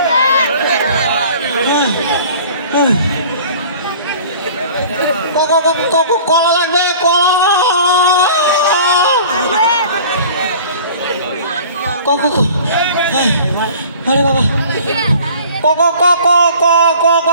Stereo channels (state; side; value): inverted; both; correlation -0.45